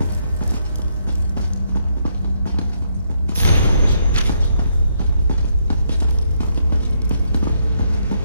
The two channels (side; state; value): both; inverted; correlation -0.75